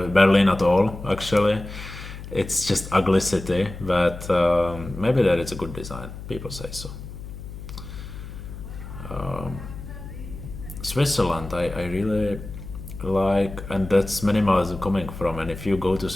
Berlin at all. Actually, it's just ugly city. But maybe that it's a good design. People say so. Switzerland, I and that's minimalism coming from. And if you go to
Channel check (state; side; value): noise; left; hum, 11 dB below the sound